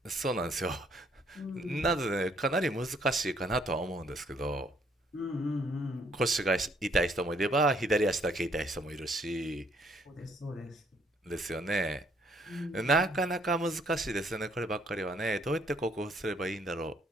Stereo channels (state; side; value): normal; both; correlation 0.66